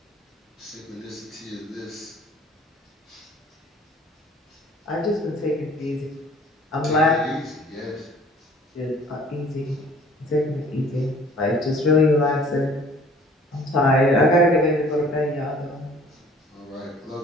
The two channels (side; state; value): both; normal; correlation 0.53